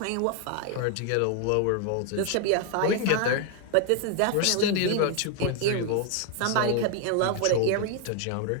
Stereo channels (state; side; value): different; both; correlation 0.00